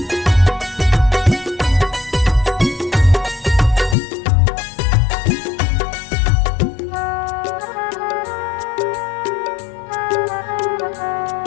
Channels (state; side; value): drops out; right; at 4.0 s